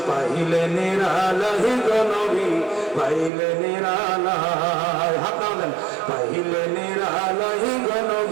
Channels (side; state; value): left; drops out; at 3.3 s